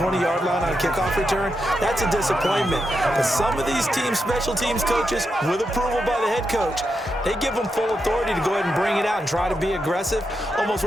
line on a kickoff return, that's a disappointment. But some of these teams, special teams coaches, with approval by the head coach, they give them full authority to go ahead and bring it out and try to be aggressive, almost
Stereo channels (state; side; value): normal; both; correlation 0.85